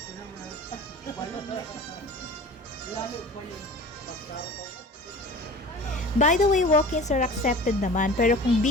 By the way, walk-ins are accepted naman, pero kung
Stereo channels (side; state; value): both; normal; correlation 0.39